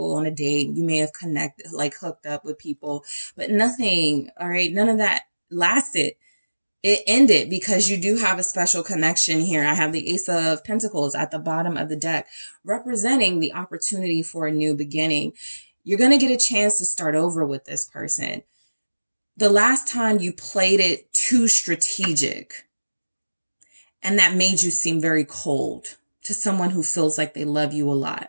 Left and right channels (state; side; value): inverted; both; correlation -1.00